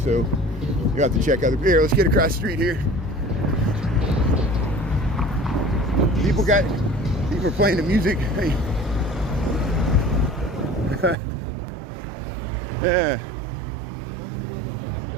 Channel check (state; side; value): drops out; left; at 11.2 s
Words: so you have to check out the beer. Let's get across the street here. People are playing the music. Hey.